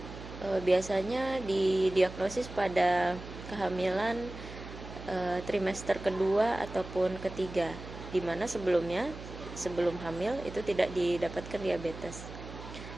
Biasanya didiagnosis pada kehamilan trimester kedua ataupun ketiga, di mana sebelum hamil itu tidak didapatkan diabetes.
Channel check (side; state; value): right; noise; hum, 12 dB below the sound